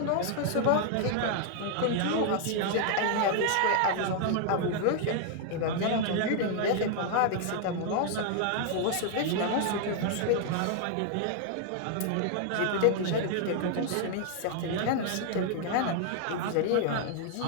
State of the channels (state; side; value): different; both; correlation 0.00